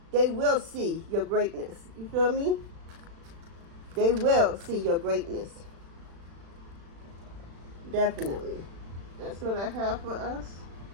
They will see your greatness. You feel me? They will see your greatness. Definitely. That's what I have for us.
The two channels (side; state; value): left; late; 36 ms